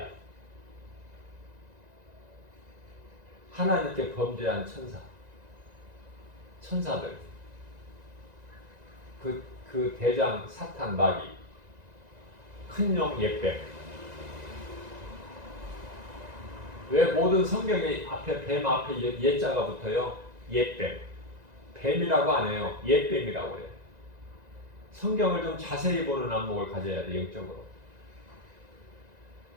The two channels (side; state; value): left; late; 1.9 ms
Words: 하나님께 범죄한 천사들, 그 대장 사탄 마귀, 큰 용 옛뱀. 왜 모든 성경에 앞에 뱀 앞에 옛자가 붙어요? 옛뱀. 뱀이라고 안 해요. 옛뱀이라고 해요. 성경을 좀 자세히 보는 안목을 가져야 돼, 영적으로.